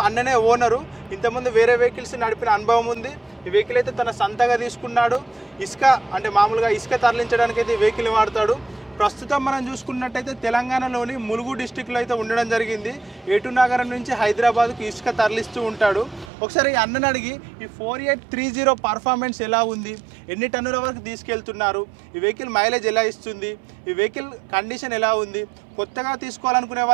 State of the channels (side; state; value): left; drops out; at 16.3 s